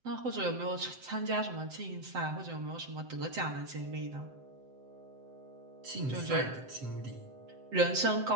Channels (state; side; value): late; left; 7.8 ms